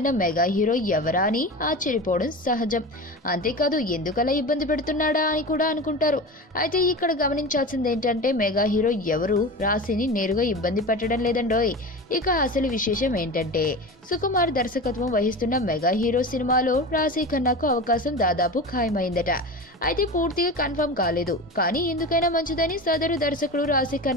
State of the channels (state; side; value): normal; both; correlation 0.29